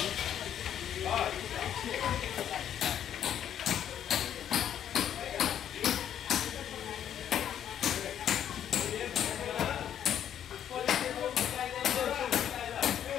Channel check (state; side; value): quieter; right; 9.8 dB